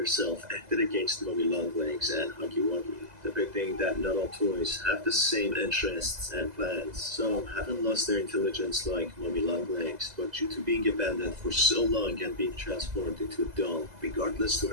acted against Mummy Longlegs and Huggy Wuggy, depicting that not all toys have the same interests and plans. Some haven't lost their intelligence like Mummy Longlegs, but due to being abandoned for so long and being transformed into a doll, regardless to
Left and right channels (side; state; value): left; late; 2.0 ms